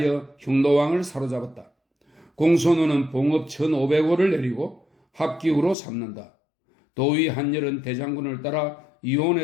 흉노왕을 사로잡았다. 공손우는 봉업 1500호를 내리고 합기후로 삼는다. 도위 한열은 대장군을 따라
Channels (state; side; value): drops out; right; at 5.8 s